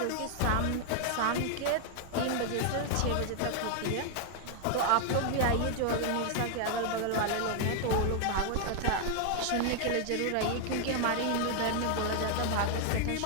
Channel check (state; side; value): different; both; correlation 0.00